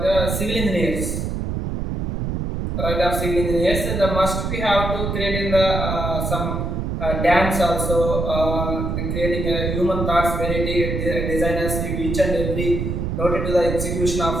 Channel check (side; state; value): right; noise; rumble, 2 dB below the sound